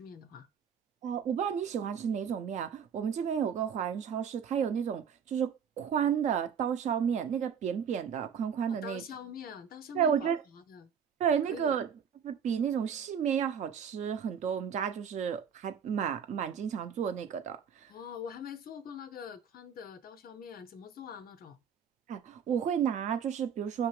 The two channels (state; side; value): quieter; left; 7.3 dB